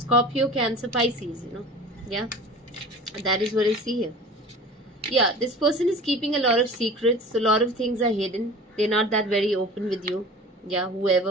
Cancer, Pisces, Yeah, that is what I see here. Yeah, this person is keeping a lot of secrets. A lot of things are hidden. They're not that very open with you. Yeah,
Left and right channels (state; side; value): normal; both; correlation 0.39